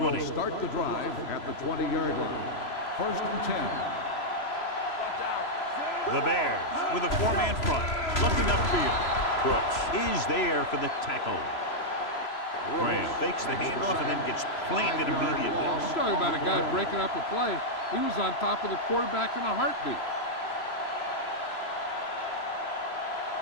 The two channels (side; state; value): right; late; 3.0 ms